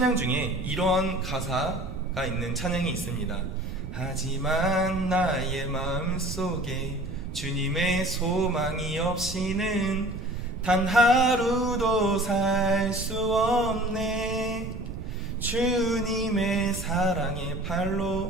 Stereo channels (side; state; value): right; noise; rumble, 9 dB below the sound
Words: 중에 이러한 가사가 있는 찬양이 있습니다. 하지만 나의 마음속에 주님의 소망이 없이는 단 하루도 살 수 없네. 주님의 사랑의